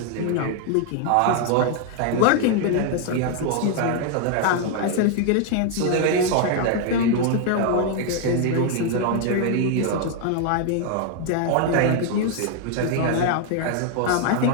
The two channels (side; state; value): both; different; correlation 0.00